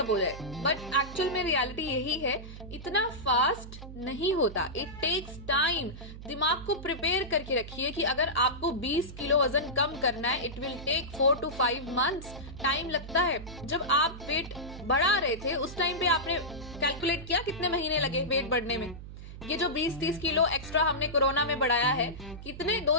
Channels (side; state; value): right; noise; hum, 12 dB below the sound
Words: हो जाए। बट एक्चुअल में रियलिटी यही है, इतना फास्ट नहीं होता, इट टेक्स टाइम। दिमाग को प्रिपेयर करके रखिए कि अगर आपको 20 किलो वजन कम करना है, it will take 4 to 5 months time लगता है। जब आप वेट बढ़ा रहे थे उस टाइम पे आपने कैलकुलेट किया कितने महीने लगे वेट बढ़ने में? ये जो 20-30 किलो एक्स्ट्रा हमने कोरोना में बढ़ाया है, कितने